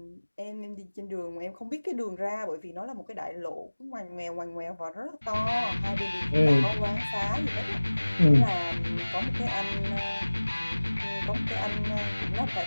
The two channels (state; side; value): inverted; both; correlation -1.00